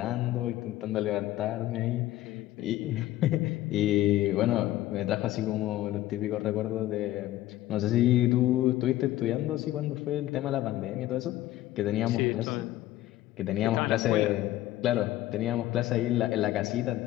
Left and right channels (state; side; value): quieter; right; 14.9 dB